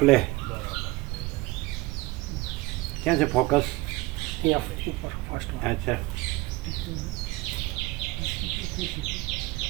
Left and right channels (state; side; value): quieter; left; 21.3 dB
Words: ક્યાં છે ફોકસ? અચ્છા,